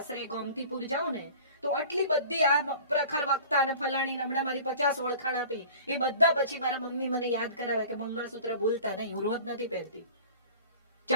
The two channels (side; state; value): both; inverted; correlation -0.43